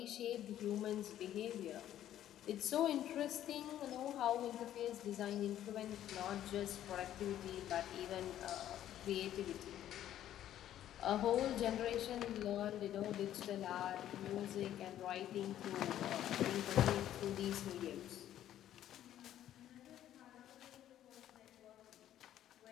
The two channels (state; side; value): quieter; right; 11.8 dB